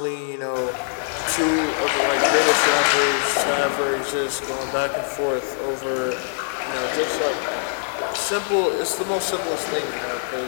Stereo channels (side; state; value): right; silent; digital silence